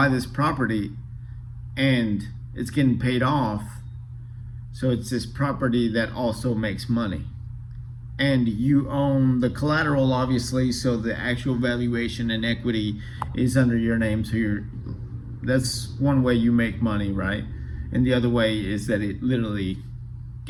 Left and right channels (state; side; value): identical; both; correlation 1.00